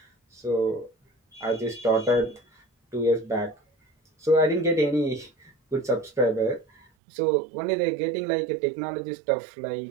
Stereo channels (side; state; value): left; drops out; at 6.9 s